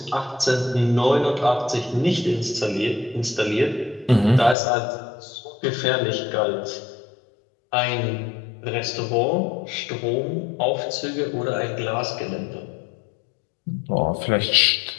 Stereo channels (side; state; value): right; drops out; at 4.5 s